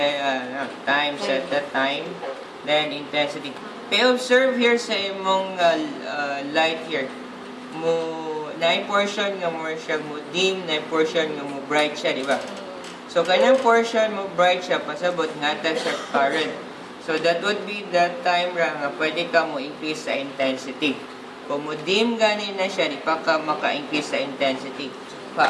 time, set the time, then intensity. Kaya observe here sa imong light here. Na portion nga mo siya mo dim, na portion nga mo bright siya, di ba? So, kanyang portion mo bright siya, pasabot nga ta siya current. So, that would be that time nga pwede ka mo increase sa intensity. Kung mo dim ganin na siya, di pa ka maka-increase sa intensity.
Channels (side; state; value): both; identical; correlation 1.00